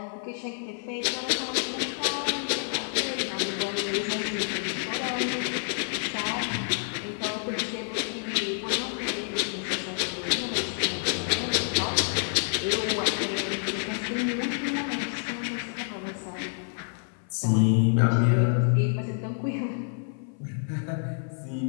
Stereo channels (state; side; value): silent; right; 59 dB below the other